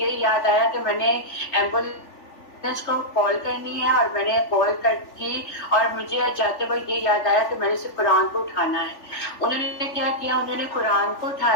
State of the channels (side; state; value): right; late; 3.4 ms